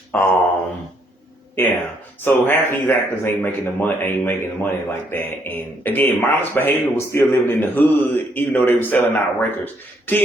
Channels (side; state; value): both; normal; correlation 0.71